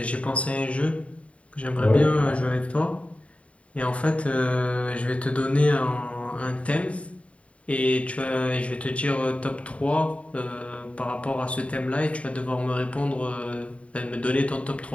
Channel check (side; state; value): right; late; 0.064 ms